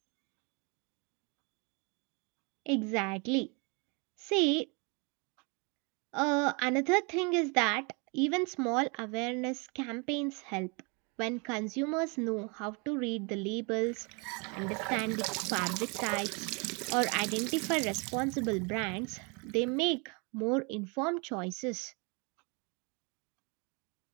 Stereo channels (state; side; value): quieter; left; 32.2 dB